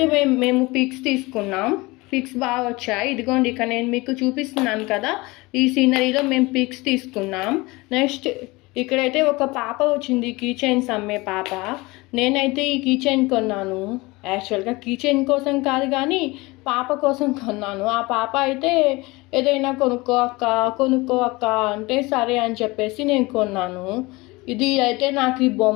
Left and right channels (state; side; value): quieter; right; 23.0 dB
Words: మేము పిక్స్ తీసుకున్నాం. పిక్స్ బాగా వచ్చాయి. ఇదిగోండి, ఇక్కడ నేను మీకు చూపిస్తున్నాను కదా, ఈ సీనరీలో మేము పిక్స్ తీసుకున్నాం. నెక్స్ట్ ఇక్కడైతే ఒక పాప వచ్చింది, కీ చైన్స్ అమ్మే పాప. నేనైతే ఈ కీ చైన్ కొన్నాను. యాక్చువల్గా కీ చైన్ కోసం కాదు కానీ పాప కోసం కొన్నాను. ఆ పాప అయితే ఏదైనా కొనుక్కో అక్క అంటే సరే అని చెప్పేసి నేను కొన్నాను. ఇది అయితే నాకు ఈ